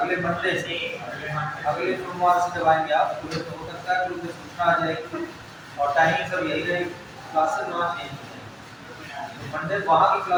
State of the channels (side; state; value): both; identical; correlation 1.00